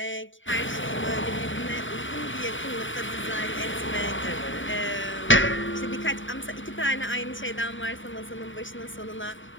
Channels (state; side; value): late; right; 0.56 ms